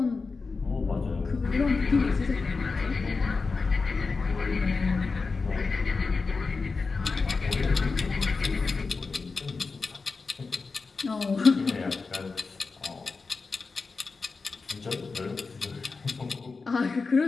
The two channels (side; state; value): right; quieter; 4.3 dB